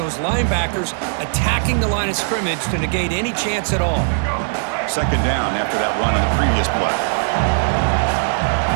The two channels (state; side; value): silent; left; 60 dB below the other